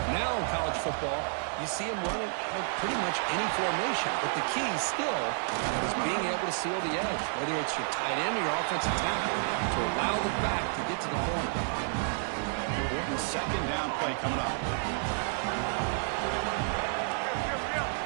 Now in college football, you see them running out of pretty much any formation, but the key still is being able to seal the edge, whether it's your tight end or your offensive tackle, to allow the back to get to the corner. Important 2nd down play coming up.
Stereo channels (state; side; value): silent; left; 57 dB below the other